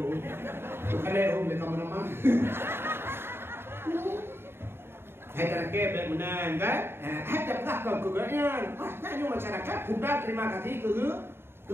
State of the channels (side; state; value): left; late; 0.11 ms